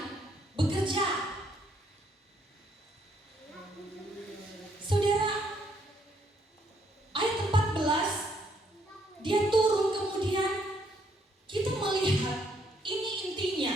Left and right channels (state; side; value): normal; both; correlation 0.70